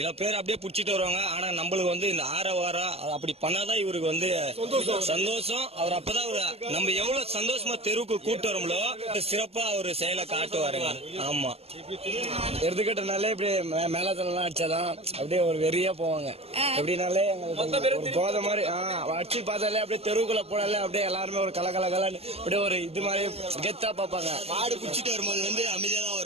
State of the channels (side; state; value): left; late; 0.29 ms